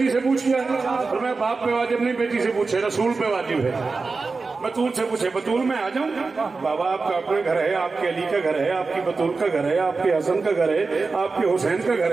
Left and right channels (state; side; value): quieter; left; 4.1 dB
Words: سے پوچھ لیا؟ اور میں باپ پہ واجب نہیں بیٹی سے پوچھے، رسول پہ واجب ہے. بطول سے پوچھے. بطول میں آ جاؤں؟ بابا آپ کا اپنا گھر ہے، آپ کے علی کا گھر ہے، آپ کی بطول کا گھر ہے، آپ کے حسن کا گھر ہے، آپ کے حسین کا گھر